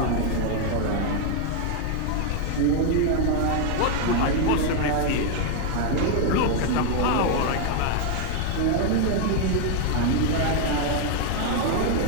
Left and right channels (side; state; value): both; different; correlation 0.00